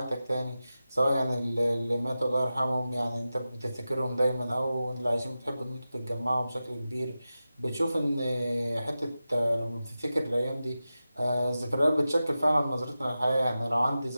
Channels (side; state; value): both; inverted; correlation -0.93